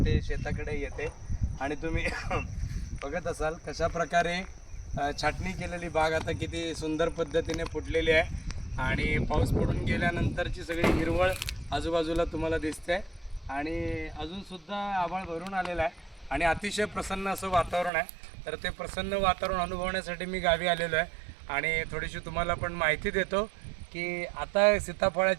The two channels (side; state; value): left; drops out; at 17.9 s